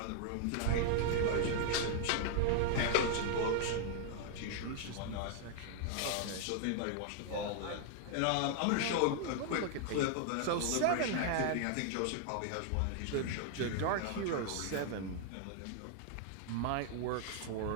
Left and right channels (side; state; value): both; different; correlation 0.00